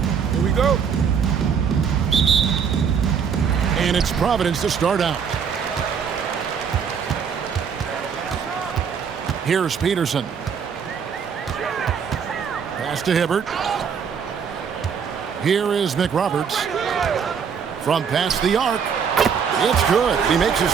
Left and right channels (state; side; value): quieter; left; 6.9 dB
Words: Here we go. And it's Providence to start out. Here's Peterson. Pass to Hibbert. Here is McRoberts. From past the arc. It's good. He makes his